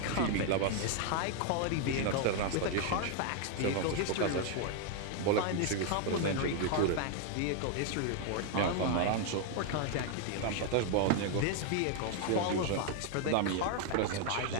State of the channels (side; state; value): both; different; correlation 0.00